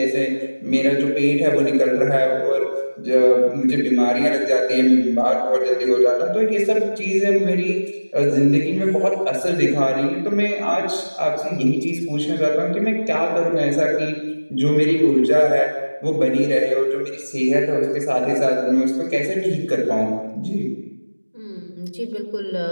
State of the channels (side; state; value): both; inverted; correlation -1.00